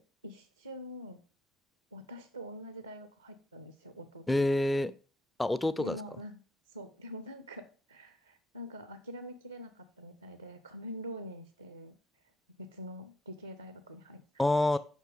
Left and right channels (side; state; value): both; normal; correlation 0.81